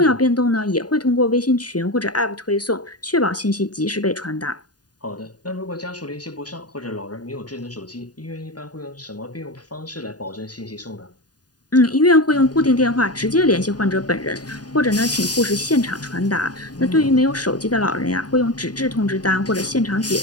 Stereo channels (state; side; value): late; right; 0.69 ms